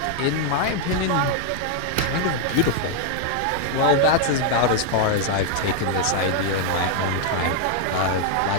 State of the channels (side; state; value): both; different; correlation 0.00